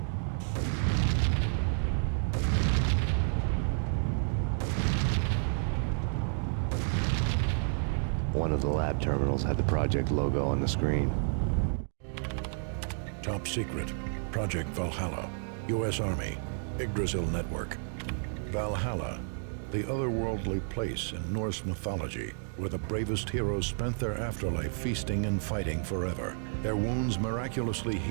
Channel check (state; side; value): silent; left; digital silence